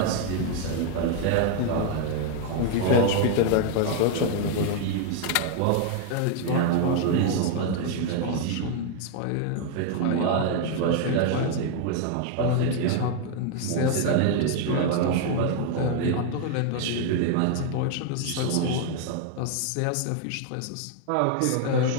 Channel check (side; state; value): both; different; correlation 0.00